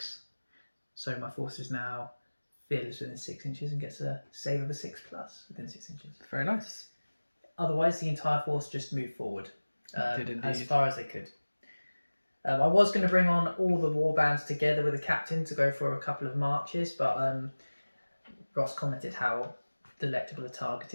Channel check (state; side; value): inverted; both; correlation -1.00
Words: So my force is now fearless within 6 inches and gets a save of a 6+ within 6 inches. Very nice. Otherwise, the entire force just moved forward Did indeed. as far as they could. I was going to bring on all the warbands together with the captain to go for a couple of marches, but Ross commented how delectable a target